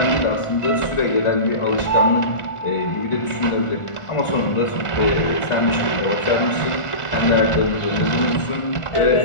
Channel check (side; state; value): right; late; 1.4 ms